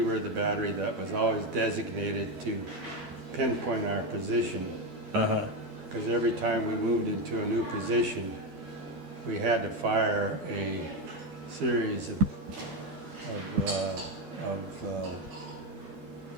were the battery that was always designated to pinpoint our position, Uh-huh. because every time we moved into a new position, we had to fire a series of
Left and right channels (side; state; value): left; late; 12 ms